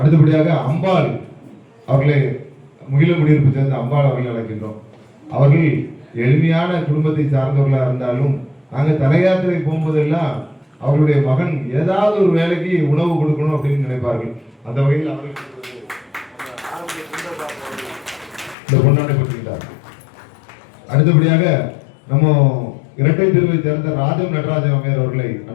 அம்பாள் அவர்களை முகிலங்குடியிருப்பு சேர்ந்த அம்பாள் அவர்களை அழைக்கின்றோம். அவர்கள் எளிமையான குடும்பத்தை சார்ந்தவர்களாக இருந்தாலும் நாங்கள் தலையாத்திரை போகும்போதெல்லாம் அவருடைய மகன் ஏதாவது ஒரு வேலைக்கு உணவு கொடுக்கணும் அப்படின்னு நினைப்பார்கள். அந்த வகையில் அவர்கள் இந்த பொன்னாடை பற்றிக்கிட்டார். அடுத்தபடியாக நம்ம இரட்டை தெருவை சேர்ந்த ராஜம் நடராஜன் அம்மையார் அவர்களை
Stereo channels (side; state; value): right; drops out; at 18.6 s